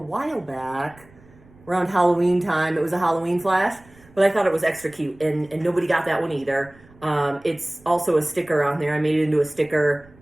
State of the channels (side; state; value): right; noise; rumble, 26 dB below the sound